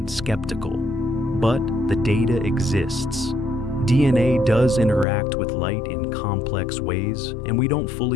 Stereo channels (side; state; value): right; drops out; at 5.1 s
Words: skeptical, but the data exists. DNA does interact with light in complex ways, and we don't